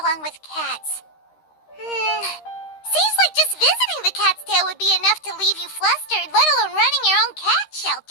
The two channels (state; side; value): late; right; 13 ms